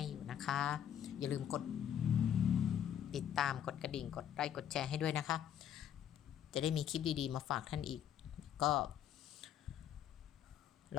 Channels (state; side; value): quieter; right; 9.9 dB